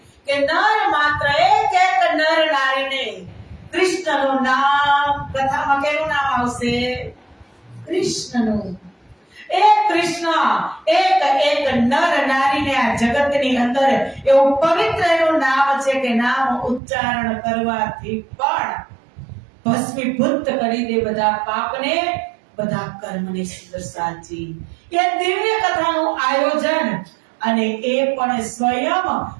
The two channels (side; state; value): left; drops out; at 16.8 s